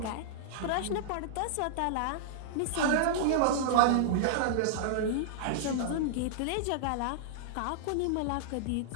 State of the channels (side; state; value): both; different; correlation -0.01